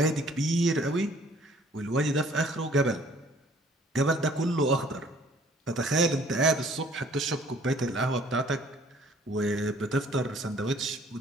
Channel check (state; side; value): normal; both; correlation 0.57